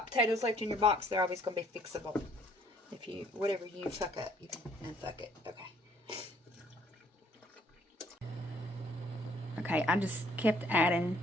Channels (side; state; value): both; normal; correlation 0.62